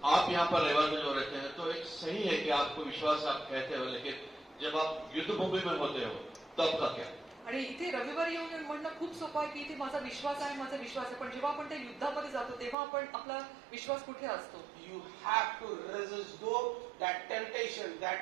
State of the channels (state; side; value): drops out; left; at 12.8 s